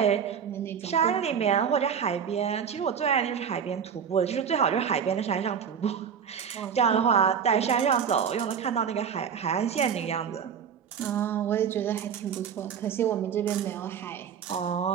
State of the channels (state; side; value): quieter; left; 7.5 dB